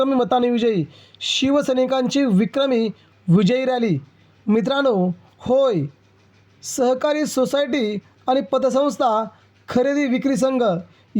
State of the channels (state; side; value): identical; both; correlation 1.00